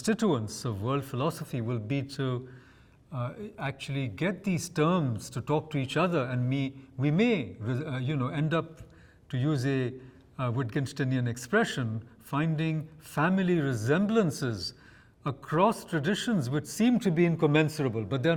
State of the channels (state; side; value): identical; both; correlation 1.00